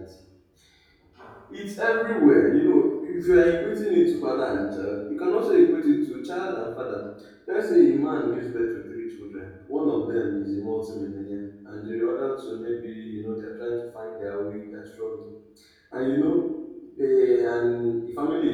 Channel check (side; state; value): both; identical; correlation 1.00